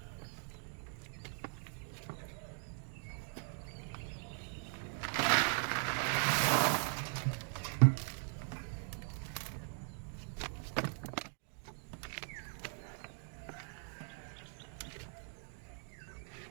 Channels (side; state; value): left; silent; 51 dB below the other